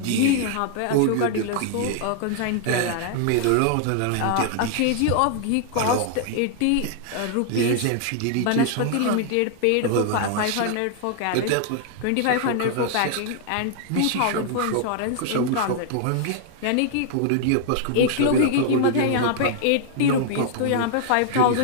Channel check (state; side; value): different; both; correlation 0.00